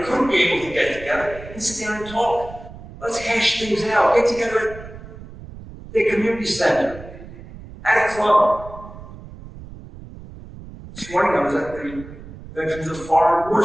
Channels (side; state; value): right; noise; rumble, 15 dB below the sound